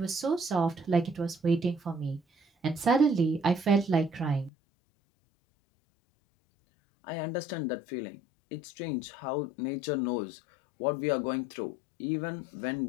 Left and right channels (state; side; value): drops out; right; at 4.5 s